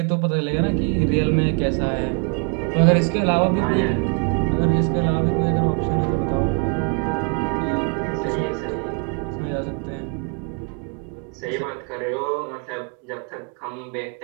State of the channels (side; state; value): left; quieter; 38.8 dB